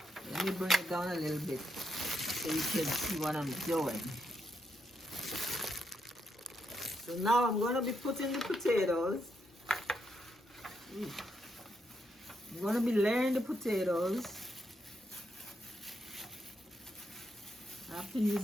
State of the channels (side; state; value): both; normal; correlation 0.80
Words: Let me bring it down a little bit so you can see what I'm doing. So now I'm going to be putting the potatoes. I'm going to be layering the potatoes. I have to use